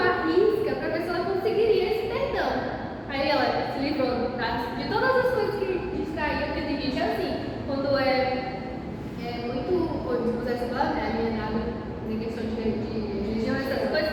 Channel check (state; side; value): identical; both; correlation 1.00